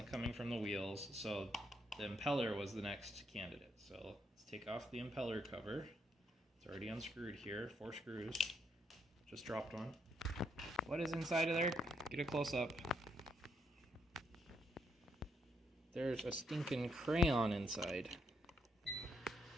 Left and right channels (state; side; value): normal; both; correlation 0.76